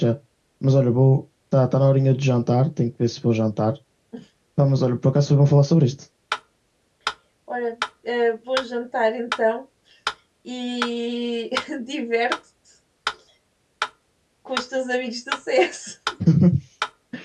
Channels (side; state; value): both; identical; correlation 1.00